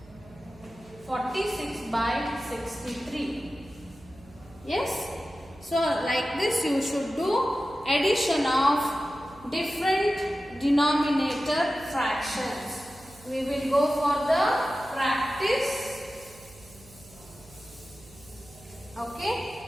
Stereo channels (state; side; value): noise; right; hum, 23 dB below the sound